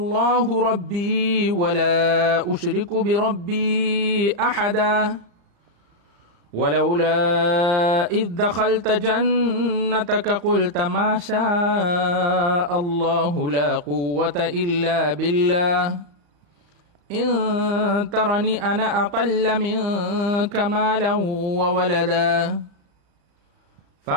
ربي ولا أشرك بربي أحدا ولولا إذ دخلت جنتك قلت ما شاء الله لا قوة إلا بالله إن ترني أنا أقل منك مالا وولدا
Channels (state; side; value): late; left; 35 ms